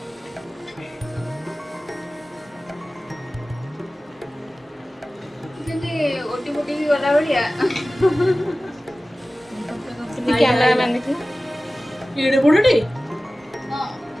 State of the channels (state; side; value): normal; both; correlation 0.96